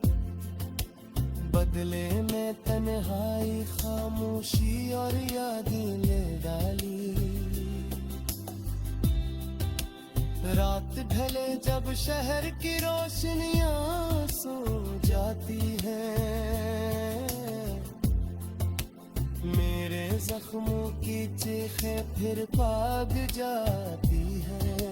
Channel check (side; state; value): both; identical; correlation 1.00